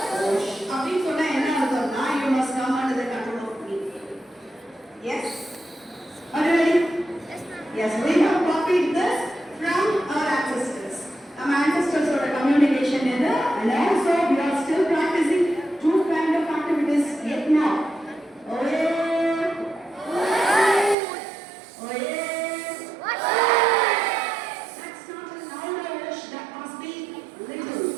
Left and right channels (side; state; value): left; drops out; at 21.0 s